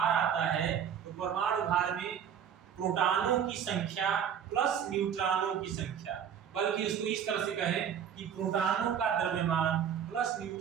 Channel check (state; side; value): quieter; left; 8.5 dB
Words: आता है तो परमाणु भार में प्रोटॉनों की संख्या प्लस न्यूट्रॉनों की संख्या, बल्कि उसको इस तरह से कहें कि प्रोटॉनों का द्रव्यमान प्लस